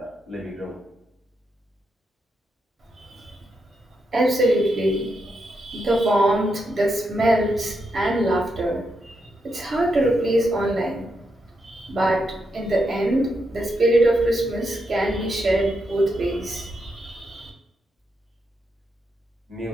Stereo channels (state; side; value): normal; both; correlation 0.83